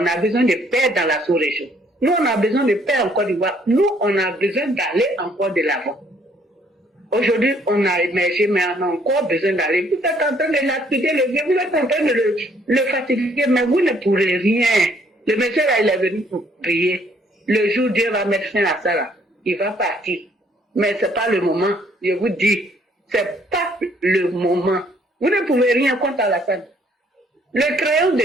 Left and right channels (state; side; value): normal; both; correlation 0.64